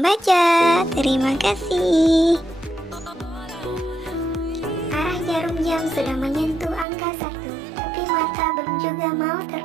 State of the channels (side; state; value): left; drops out; at 6.9 s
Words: Terima kasih. Arah jarum jam sudah menyentuh angka 1, tapi mata belum juga mau